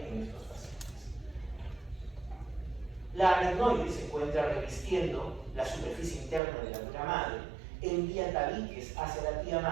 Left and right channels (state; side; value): drops out; left; at 6.4 s